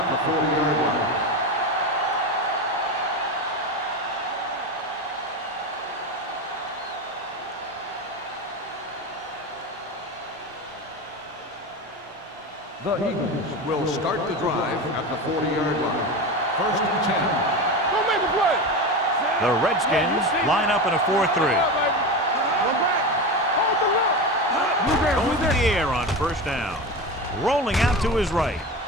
the 40-yard line. The Eagles will start the drive at the 40-yard line. First and 10. Go make a play. The Redskins line up in a 4-3. Go back. Hold the look. Going to the air on first down. Rolling out to his right.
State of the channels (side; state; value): both; normal; correlation 0.23